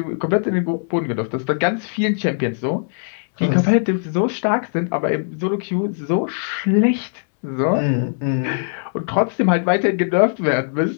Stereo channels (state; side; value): silent; right; 66 dB below the other